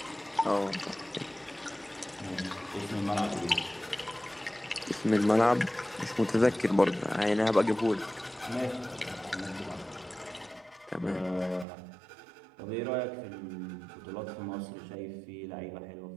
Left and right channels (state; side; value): drops out; left; at 11.7 s